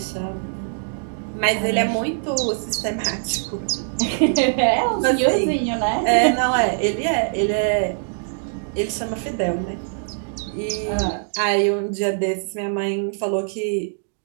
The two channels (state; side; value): silent; left; digital silence